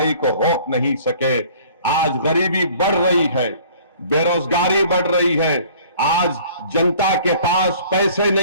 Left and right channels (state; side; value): inverted; both; correlation -0.52